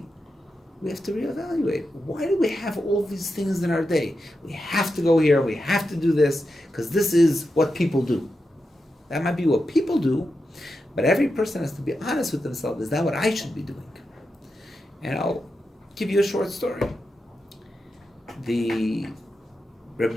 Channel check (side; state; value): both; normal; correlation 0.88